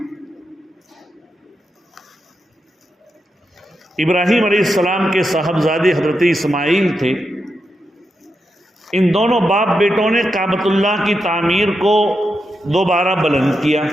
ابراہیم علیہ السلام کے صاحبزادے حضرت اسماعیل تھے۔ ان دونوں باپ بیٹوں نے کعبۃ اللہ کی تعمیر کو دوبارہ بلند کیا،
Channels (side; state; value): both; normal; correlation 0.86